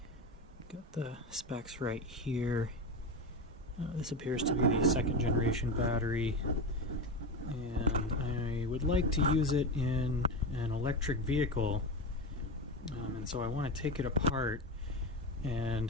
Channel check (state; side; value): normal; both; correlation 0.18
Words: Got the specs right here. This appears to be the second generation battery, and I would like to use it in an electric vehicle, and so I want to take it apart